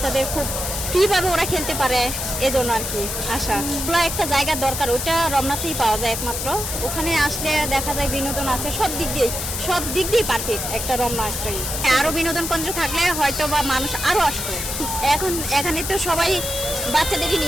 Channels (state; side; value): noise; left; hiss, 4 dB below the sound